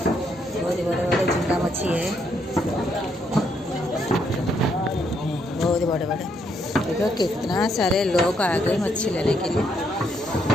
झींगा मच्छी है, बहुत बड़े बड़े। देखो कितना सारे लोग आ गए मच्छी लेने के लिए।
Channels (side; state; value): both; normal; correlation 0.74